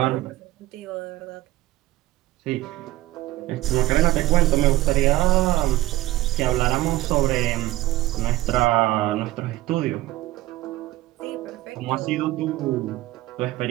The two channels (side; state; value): left; quieter; 16.7 dB